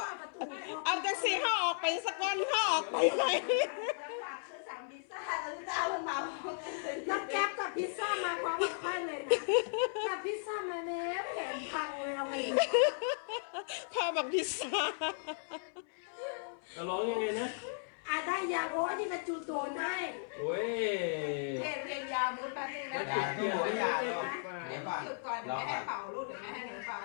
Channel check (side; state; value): right; silent; 54 dB below the other